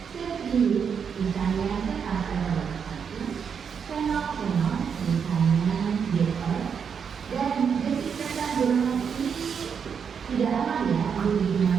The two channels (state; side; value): quieter; left; 6.8 dB